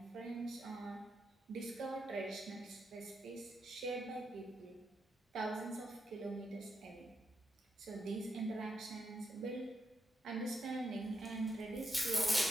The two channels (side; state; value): both; normal; correlation 0.82